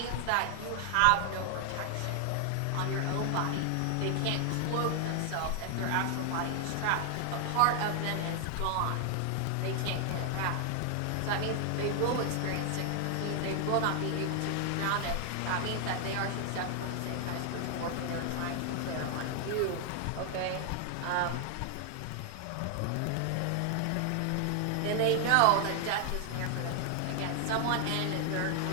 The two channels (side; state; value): both; different; correlation 0.00